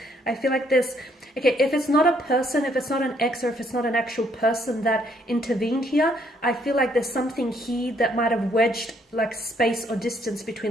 I feel like there's, okay, if it's not a person, if it's not an ex, or if it's not an actual person that intervened here, I feel like there's something here that might have wedged like space or distance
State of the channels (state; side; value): normal; both; correlation 0.68